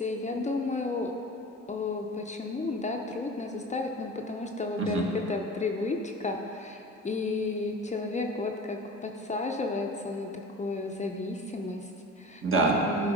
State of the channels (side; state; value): both; normal; correlation 0.36